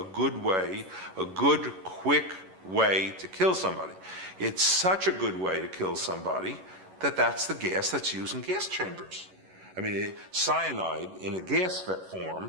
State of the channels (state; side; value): late; left; 11 ms